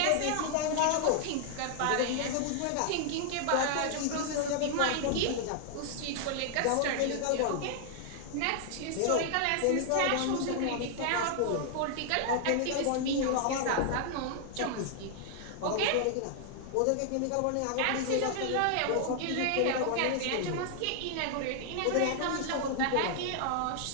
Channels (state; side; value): different; both; correlation 0.00